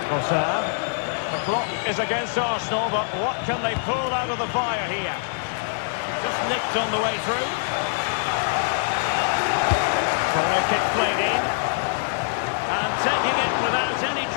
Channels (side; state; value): right; silent; 63 dB below the other